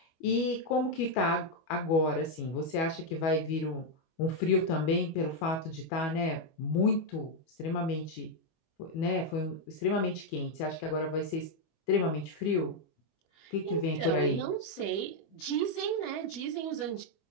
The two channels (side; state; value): right; late; 25 ms